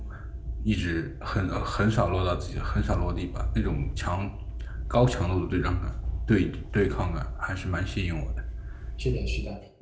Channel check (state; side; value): identical; both; correlation 1.00